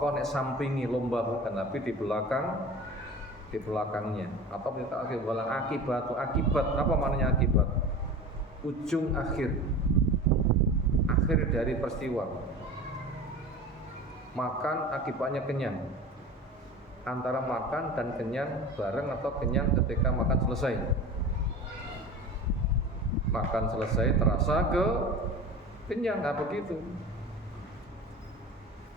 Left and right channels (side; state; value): both; normal; correlation 0.34